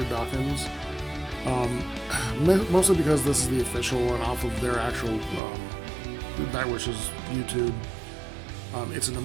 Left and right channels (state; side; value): drops out; left; at 5.4 s